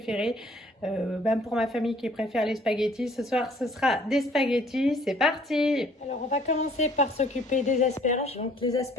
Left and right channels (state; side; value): normal; both; correlation 0.58